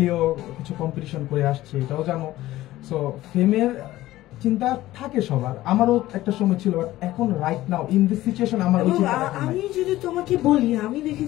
কিছু কম্পিটিশন করে আসছি, এটাও জানো। সো ফেমের চিন্তা থাকে সবার, আমারও একটা সময় ছিল, বাট এখন right now in this situation আমার ওই চিন্তাটা নাই। আমি যদি তোমাকে বলি, আমি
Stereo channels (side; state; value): right; quieter; 15.9 dB